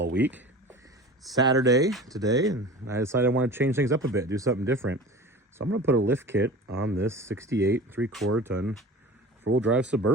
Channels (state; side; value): normal; both; correlation 0.37